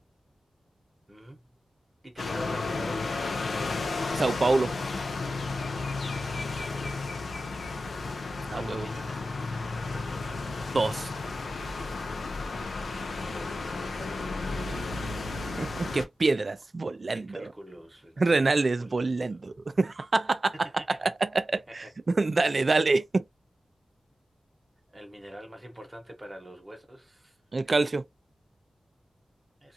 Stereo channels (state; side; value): normal; both; correlation 0.93